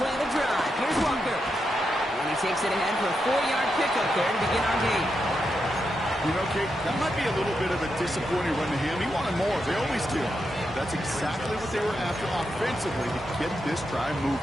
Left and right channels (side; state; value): both; normal; correlation 0.85